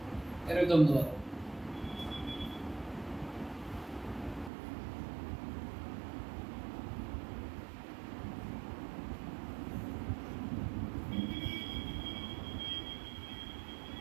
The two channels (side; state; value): left; drops out; at 4.5 s